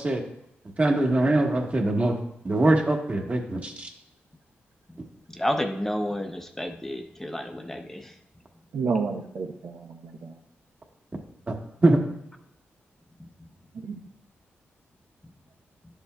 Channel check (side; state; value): both; normal; correlation 0.93